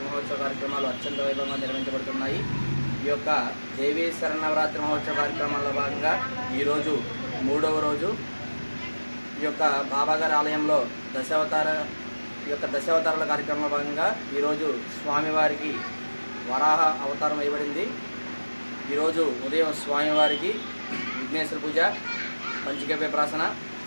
మహోత్సవ కార్యక్రమాలు అత్యంత వైభవంగా నిర్వహించబడుతున్నాయి. ఈ యొక్క దేవీ శరణవరాత్రి మహోత్సవ కార్యక్రమాల్లో భాగంగా ఈరోజు 3వ రోజు. ఈ ఈ యొక్క బాబాగారి ఆలయంలో దశావతారాల కార్యక్రమంలో భాగంగా ఈరోజు స్వామివారికి వరాహ అవతారం వేయబడింది. ఈరోజు ఉదయం స్వామివారికి విఘ్నేశ్వర పూజ, పంచగవ్య ప్రాసన,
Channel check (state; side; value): inverted; both; correlation -1.00